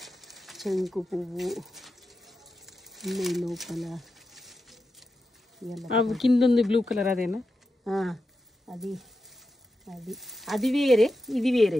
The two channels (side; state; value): both; normal; correlation 0.89